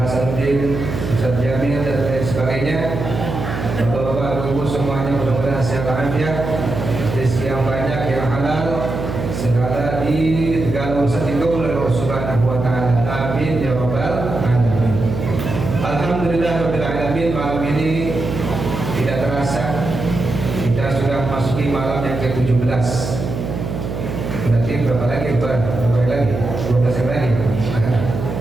Ustaz Jamil dan lain sebagainya. Bapak-bapak, ibu semuanya mudah-mudahan sehat walafiat, rezeki yang banyak, yang halal, segala segala urusan dikabul oleh Allah Subhanahu wa taala. Amin ya rabbal alamin. Alhamdulillahirabbil alamin. Malam ini tidak terasa kita sudah memasuki malam yang ke-17. Berarti berapa lagi lebaran? Berapa hari lagi? 12 hari lagi.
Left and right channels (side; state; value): right; noise; hum, 5 dB below the sound